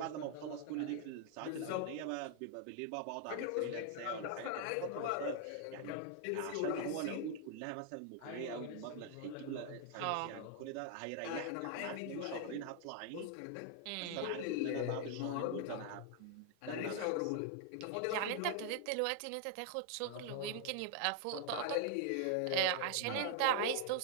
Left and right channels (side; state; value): both; different; correlation 0.00